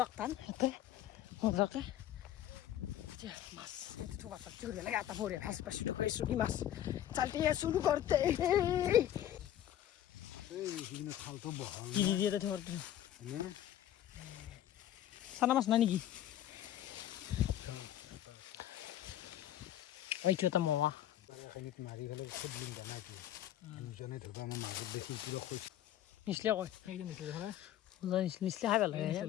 একটান ইয়াতে মজাকে মাছ লাগে এটা ভরে ভাস পাশে ঢুকাইছো কি মাছ চালতে শুরু করতে সানা মাছ না নাকি ওইটো এটা মোয়া মাৰি ফেলে খুব লিং জানাই দুজনে ধুবা মই মাজত দেখি পুৰা খুশ নিচলে কয় নিচলে খাই ভাল লাগে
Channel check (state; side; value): quieter; right; 12.0 dB